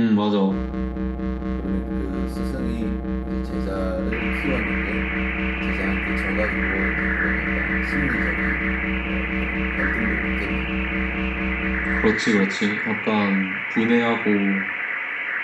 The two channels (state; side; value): identical; both; correlation 1.00